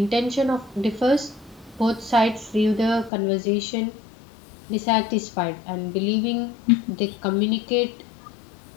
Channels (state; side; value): drops out; right; at 3.1 s